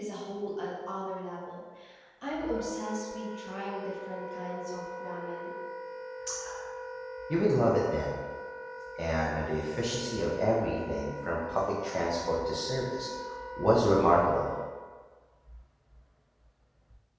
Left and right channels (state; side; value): identical; both; correlation 1.00